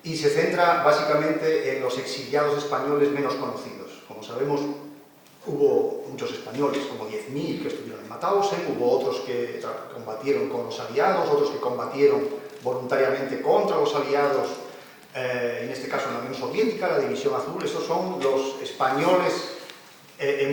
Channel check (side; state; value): both; identical; correlation 1.00